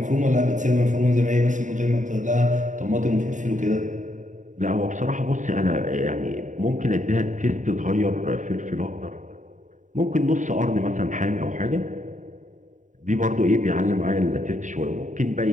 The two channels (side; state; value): left; late; 0.36 ms